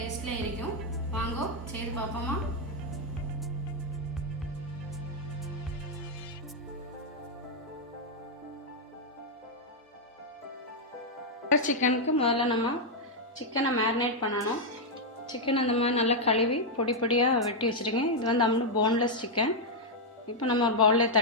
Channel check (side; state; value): both; normal; correlation -0.02